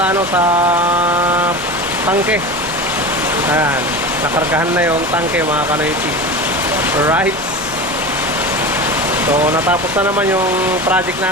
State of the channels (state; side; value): normal; both; correlation 0.28